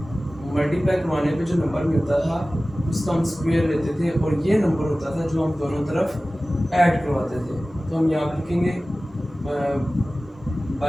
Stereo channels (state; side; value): normal; both; correlation 0.97